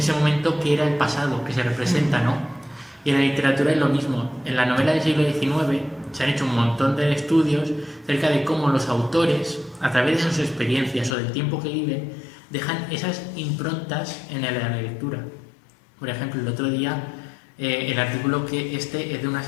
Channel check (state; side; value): drops out; right; at 11.2 s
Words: momento que era el pasado, que se representa, ¿no? Y en la literatura es lo mismo. En la novela del siglo XIX se han hecho un montón de estudios acerca de cómo los autores, a través de sus experiencias o del tiempo que viven, dejan esas improntas en la lectura. Por ejemplo, el otro día, el artículo que es de una